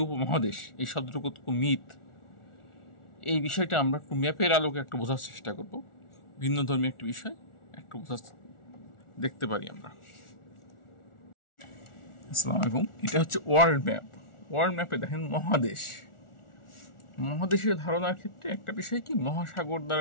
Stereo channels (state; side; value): late; right; 1.4 ms